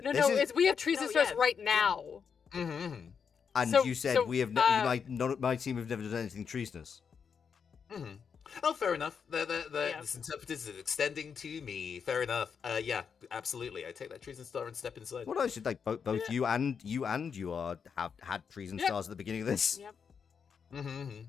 No, we have treason stars right now. And you said we have my team have never done anything treasonous. Oh, fair enough. This interpreter is extending to me. Fair enough. Yeah, absolutely. I take that treason star and step inside. Well, I should like both you and you have had treason stars at the beginning of this. Yep.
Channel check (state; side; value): quieter; right; 6.5 dB